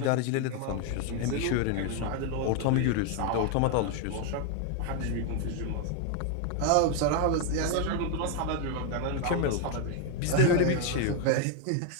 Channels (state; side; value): different; both; correlation 0.01